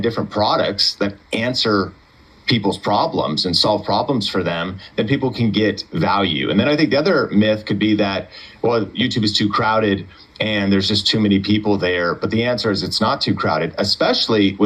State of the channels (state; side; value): identical; both; correlation 1.00